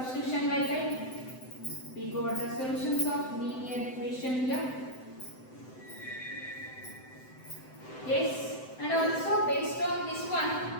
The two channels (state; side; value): late; right; 7.8 ms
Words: method. We got the solutions of linear equation here. Yes, and also based on this